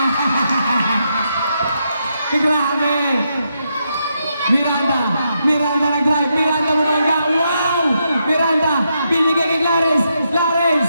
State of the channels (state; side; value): inverted; both; correlation -0.81